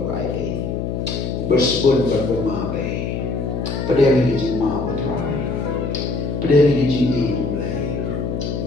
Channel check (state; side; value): noise; left; hum, 2 dB below the sound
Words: by day. Bersebut berpemabai. Pedang ini mau try. Pedang ini mulai.